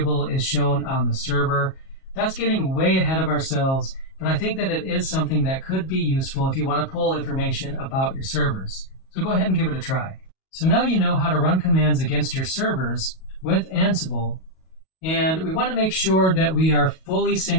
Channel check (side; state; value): right; late; 37 ms